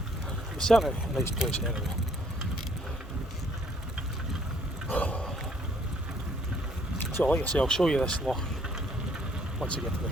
It was certainly a nice place anyway. So like I say, I'll show you this loch once I get to the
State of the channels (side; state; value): both; normal; correlation 0.64